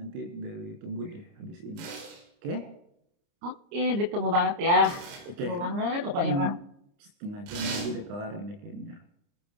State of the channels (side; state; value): left; late; 29 ms